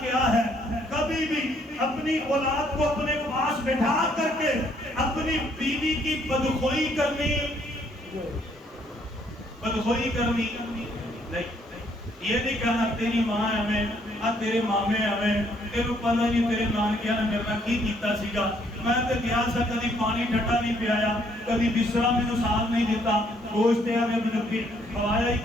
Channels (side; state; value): both; normal; correlation 0.67